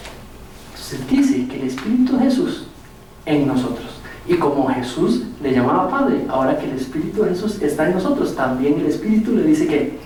Entonces dice que el Espíritu de Jesús en nosotros. Y como Jesús le llamaba Padre, ahora que el Espíritu de Jesús está en nosotros, también el Espíritu le dice que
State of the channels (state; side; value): identical; both; correlation 1.00